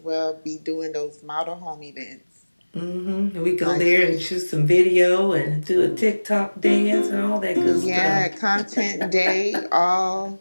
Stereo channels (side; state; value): both; inverted; correlation -1.00